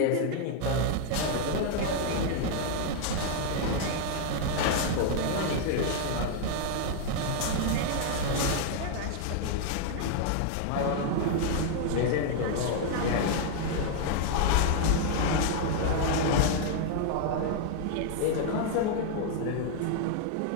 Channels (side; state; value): both; different; correlation 0.00